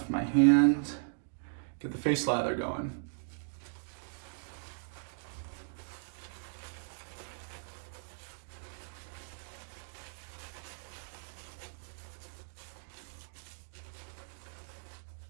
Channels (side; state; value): left; silent; digital silence